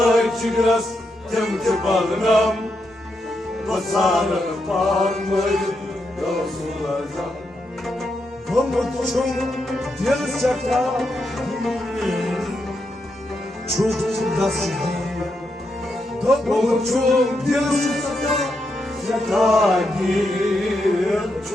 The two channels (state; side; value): normal; both; correlation 0.83